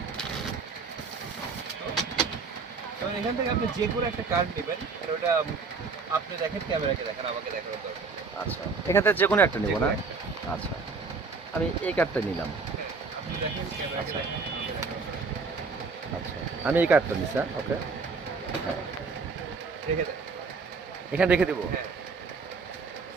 তো এখান থেকে আপনি যে কোনো একটা কার্ড নেবেন, আর ওটা আপনি দেখেন, ক্যামেরাকে দেখেন, আমাকে দেখানোর দরকার নেই। আচ্ছা, এখান থেকে যে কোনো একটা নেব যে কোনো না? একটা। আচ্ছা, আমি এই কার্ডটা নিলাম। হ্যাঁ, আপনি দেখেন, ক্যামেরাকে আচ্ছা। দেখেন, আমাকে দেখানোর দরকার নেই। আচ্ছা, আমি এই কার্ডটা নিচ্ছি। ওকে, রেখে দেন। এখানে রেখে দিব। হ্যাঁ।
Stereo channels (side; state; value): left; quieter; 4.6 dB